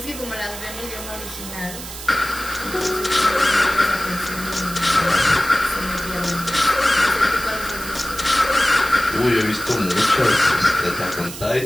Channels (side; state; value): right; noise; hiss, 11 dB below the sound